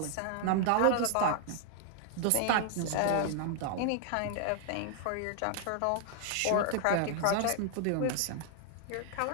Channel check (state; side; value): different; both; correlation 0.00